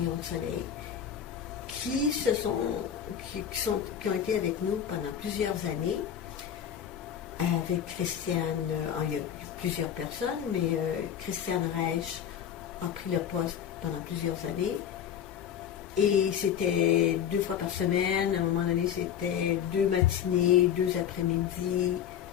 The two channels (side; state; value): right; quieter; 9.2 dB